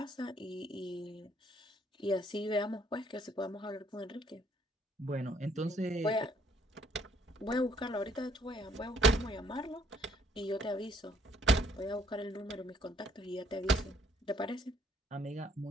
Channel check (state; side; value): normal; both; correlation 0.64